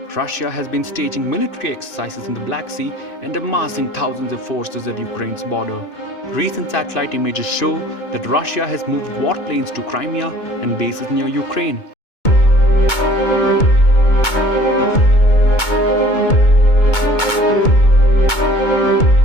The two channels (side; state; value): right; late; 2.2 ms